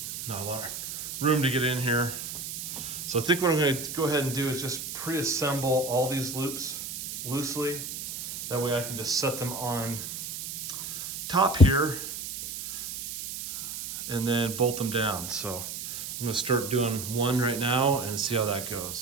not a lot of room to get in here. So I think what I'm gonna go ahead and do is just pre-assemble all these loops loosely. That way I can just set them on top here and then bolt them down. So I'm gonna start doing one right now and see how that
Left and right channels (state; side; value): noise; right; hiss, 7 dB below the sound